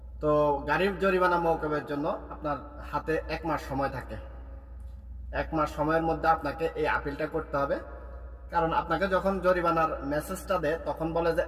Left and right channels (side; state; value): both; identical; correlation 1.00